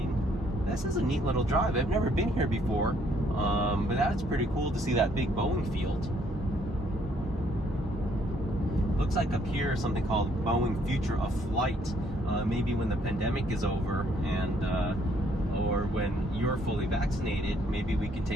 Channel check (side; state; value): both; normal; correlation 0.66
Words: This is a neat little drive. I've never been here before, but that's pretty cool to see that big Boeing field. Looks like up here something called Boeing Future of Flight. Maybe when the pandemic is over and or when you're fully vaccinated, maybe we can